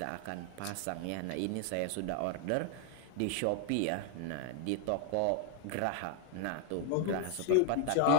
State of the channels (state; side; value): different; both; correlation 0.00